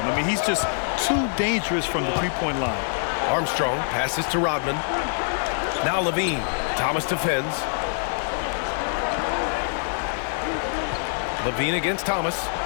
I mean, he's just too dangerous from the three-point line. Armstrong passes to Rodman. Now Levine. Thomas defends. Levine against Thomas.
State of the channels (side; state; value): right; silent; 62 dB below the other